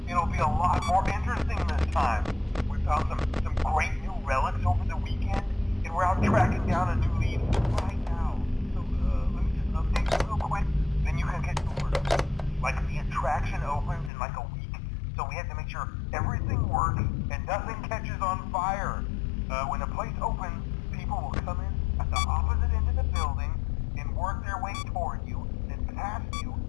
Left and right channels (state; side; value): drops out; right; at 14.1 s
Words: it'll be a lot more interesting this time. We found some great new relics over the weekend, and we're out tracking down a new lead right now. So, let me just update you real quick, then you can get to work. Like, the attraction opens in like a week, so we have to make sure everything works and nothing catches on fire. When the place opens, people will come in at the opposite end of the building and work their way toward you, then past you,